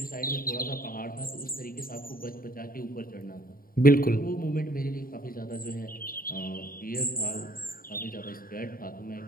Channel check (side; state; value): right; late; 0.42 ms